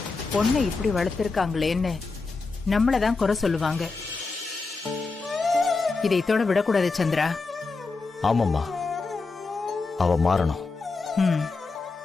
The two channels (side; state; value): right; quieter; 4.1 dB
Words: பொண்ணை இப்படி வளர்த்திருக்காங்களேன்னு நம்மளதான் குறை சொல்லுவாங்க. இதை இதோட விடக்கூடாது சந்திரா. ஆமாம்மா, அவ மாறணும்.